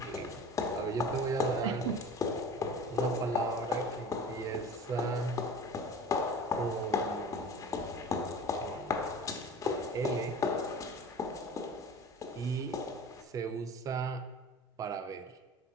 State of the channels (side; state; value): both; normal; correlation 0.39